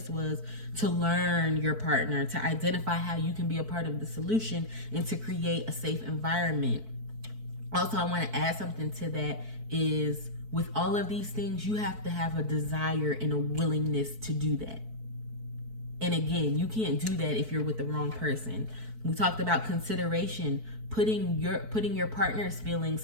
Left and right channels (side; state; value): left; late; 4.6 ms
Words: was to learn your partner, to identify how you can be a part of the solution, and to create a safe environment. Also, I want to add something to that is, with all of these things, you have to have a desire and a willingness to do that. And again, you can't do that if you're with the wrong person. We talked about consideration, putting your partner's